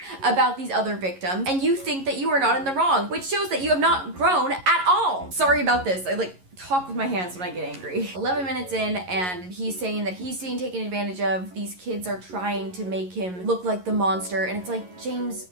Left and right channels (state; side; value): late; left; 11 ms